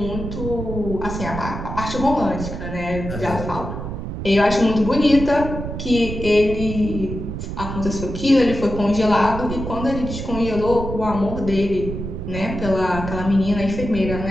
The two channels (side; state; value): right; noise; rumble, 6 dB below the sound